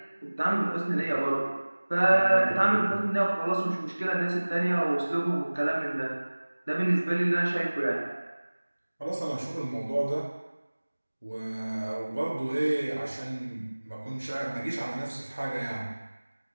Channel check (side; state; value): both; inverted; correlation -1.00